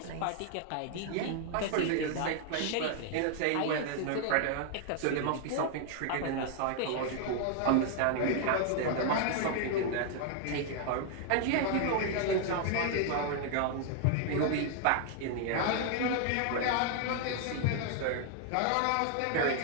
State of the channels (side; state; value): both; different; correlation 0.00